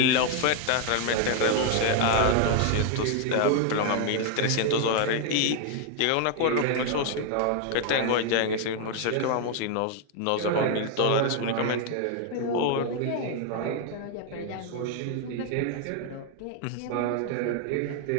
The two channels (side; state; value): both; different; correlation 0.00